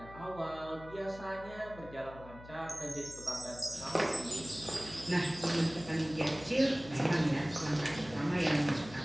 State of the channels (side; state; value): left; noise; hum, 16 dB below the sound